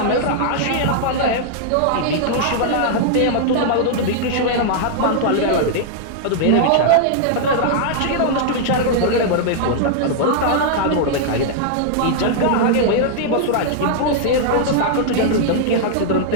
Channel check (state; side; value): different; both; correlation -0.01